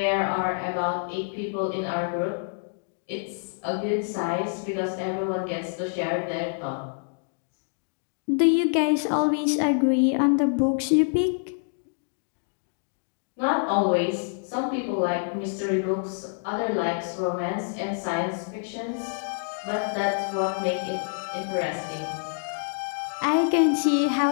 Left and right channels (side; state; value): right; silent; digital silence